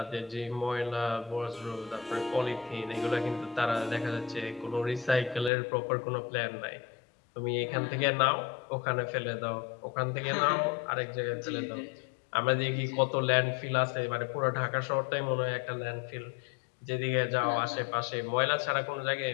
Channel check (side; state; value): right; drops out; at 5.5 s